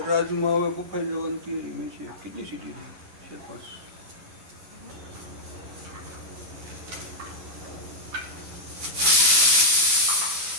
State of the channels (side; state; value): left; late; 11 ms